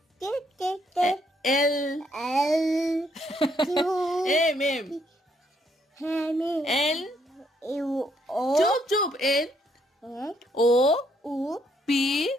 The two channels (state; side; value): normal; both; correlation 0.72